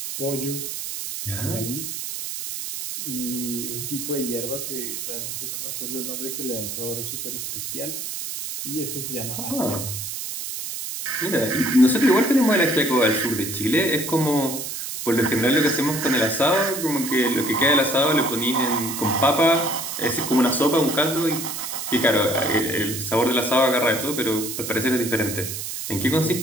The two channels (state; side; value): noise; right; hiss, 6 dB below the sound